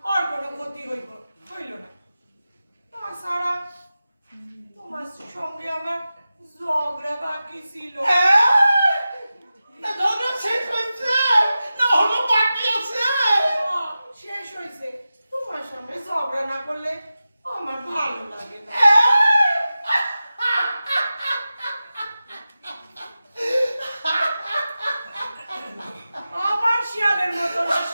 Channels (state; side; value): inverted; both; correlation -0.94